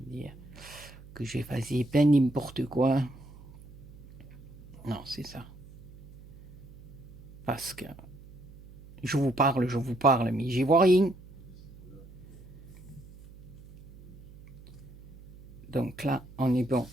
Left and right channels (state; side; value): noise; right; hum, 19 dB below the sound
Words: Que j'ai fait bien n'importe quoi. Non, c'est ça. Parce que je vous parle, mais j'y vois rien. Donc là, on est bon,